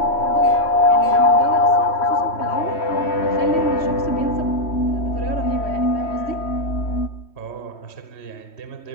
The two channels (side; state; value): right; late; 3.1 ms